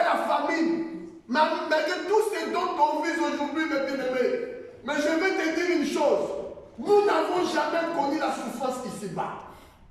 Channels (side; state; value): both; identical; correlation 1.00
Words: famine, malgré tout ce dont on vit aujourd'hui, mes bien-aimés, mais je vais te dire une chose, nous n'avons jamais connu la souffrance ici-bas.